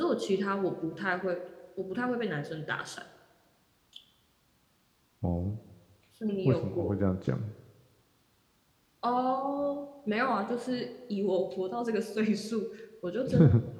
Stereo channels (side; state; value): both; identical; correlation 1.00